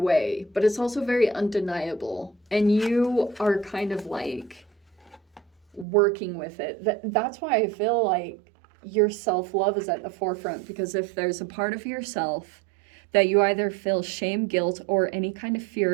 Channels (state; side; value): drops out; left; at 5.9 s